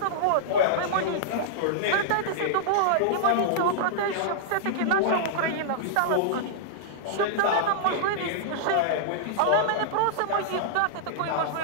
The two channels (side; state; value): both; different; correlation -0.02